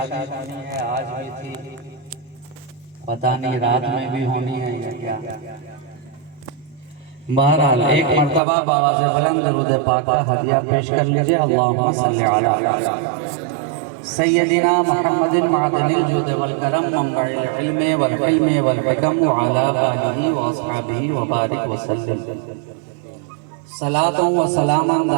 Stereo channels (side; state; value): left; drops out; at 8.4 s